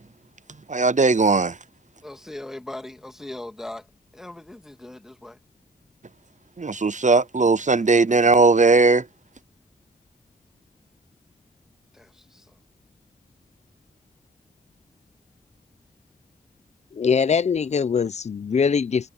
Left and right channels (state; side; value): normal; both; correlation 0.40